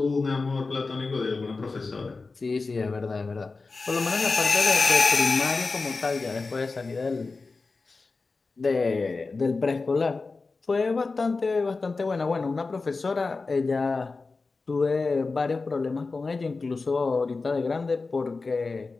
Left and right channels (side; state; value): right; quieter; 4.0 dB